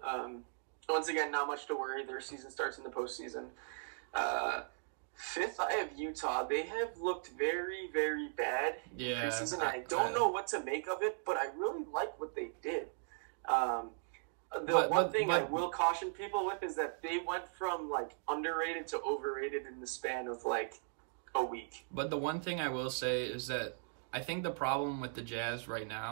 Once again, not much to worry. Their season starts in the postseason. 5th, I have Utah. They have looked very, very bad in preseason. I don't know what to make of it, but I really like what they did. One thing I will caution people with is that they went from underrated to overrated in the span of a week. But the one thing I will say is that I think the problem with the Jazz right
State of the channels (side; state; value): left; silent; digital silence